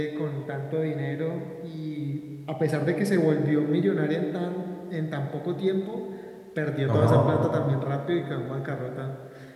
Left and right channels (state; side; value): identical; both; correlation 1.00